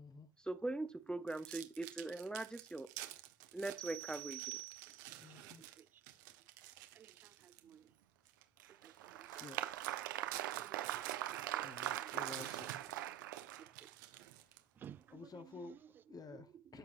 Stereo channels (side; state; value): left; quieter; 6.5 dB